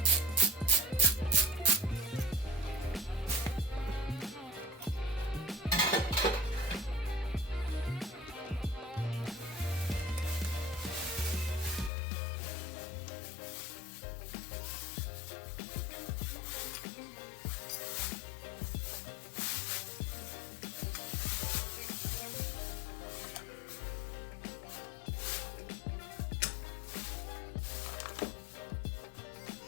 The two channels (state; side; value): drops out; right; at 11.9 s